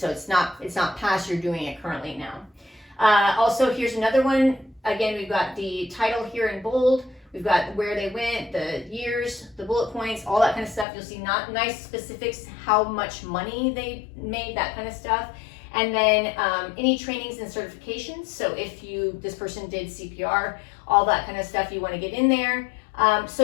it's not past, you're doing it currently now. Also, here's another one. Again, we've got the title here in bold. We've got where they went, the years, the bullet points, all that kind of stuff. You'll see nice specifics, how much money they made, that kind of stuff. And then any trainings and certifications. So if this person did CPR, all that kind of stuff you want to get in there.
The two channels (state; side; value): drops out; right; at 10.9 s